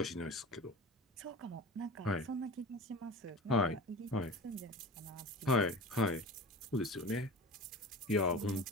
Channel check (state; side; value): normal; both; correlation 0.34